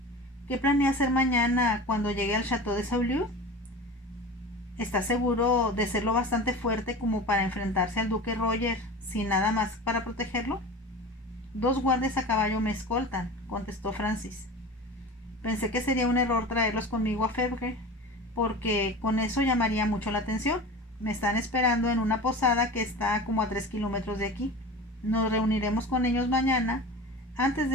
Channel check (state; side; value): normal; both; correlation 0.33